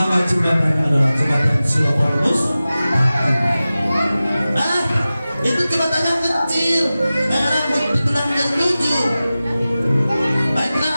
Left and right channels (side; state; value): both; inverted; correlation -0.96